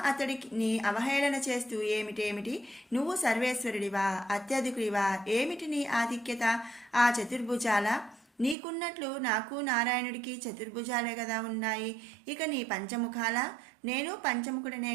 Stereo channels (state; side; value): drops out; left; at 8.6 s